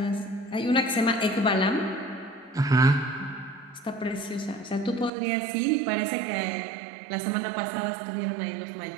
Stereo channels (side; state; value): left; drops out; at 5.1 s